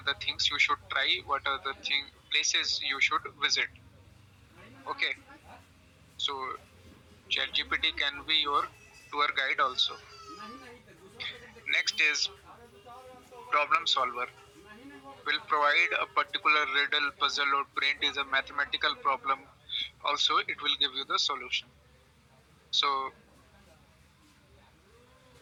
the things you should try, what are the places you should visit. Okay, so ChatGPT can be your tour guide also. Next is problem solver. Will provide a particular riddle, puzzle, or print is a mathematical problem. Also, it will give you the solution. So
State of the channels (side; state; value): both; identical; correlation 1.00